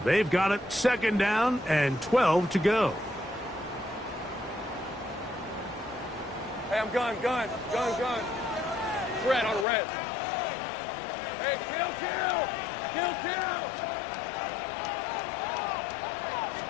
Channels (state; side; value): drops out; right; at 9.7 s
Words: They've got it 2nd down and 12 to go. Hey, I'm gun. Red on red. Hey, kill!